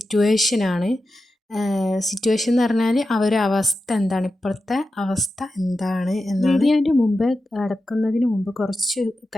സിറ്റുവേഷൻ എന്ന് പറഞ്ഞാൽ അവരുടെ അവസ്ഥ എന്താണ്, ഇപ്പോഴത്തെ അവസ്ഥ എന്താണ് എന്നാണ്. വീഡിയോൻ്റെ മുമ്പ് കടക്കുന്നതിന് മുമ്പ് കുറച്ച്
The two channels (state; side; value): normal; both; correlation 0.91